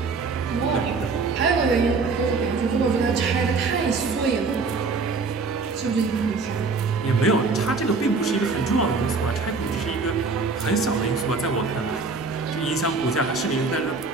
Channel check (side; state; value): left; quieter; 4.3 dB